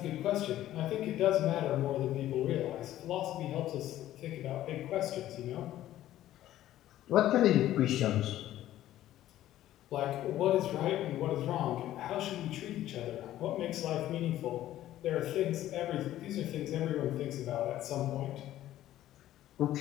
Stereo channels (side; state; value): right; quieter; 13.5 dB